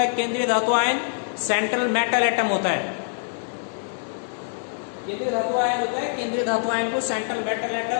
केंद्रीय धातु आयन, सेंट्रल मेटल एटम होता है। केंद्रीय धातु आयन होता है, केंद्रीय धातु आयन को सेंट्रल मेटल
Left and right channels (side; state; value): right; silent; digital silence